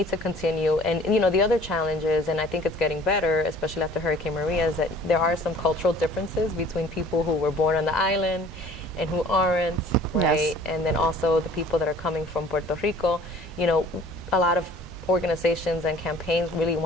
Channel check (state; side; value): normal; both; correlation 0.51